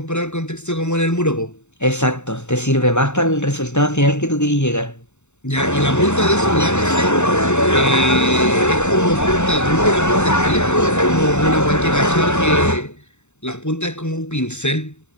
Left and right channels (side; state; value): right; late; 0.83 ms